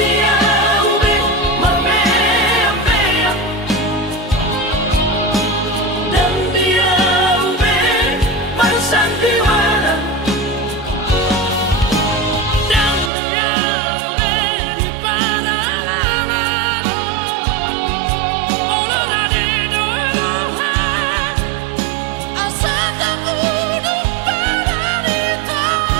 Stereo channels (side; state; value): left; drops out; at 13.1 s